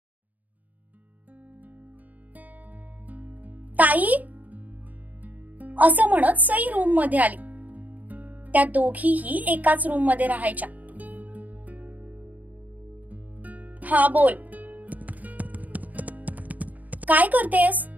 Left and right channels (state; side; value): late; left; 0.078 ms